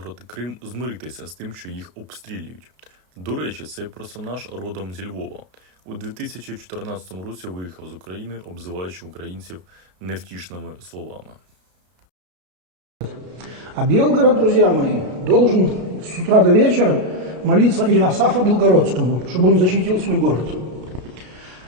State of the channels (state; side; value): late; left; 33 ms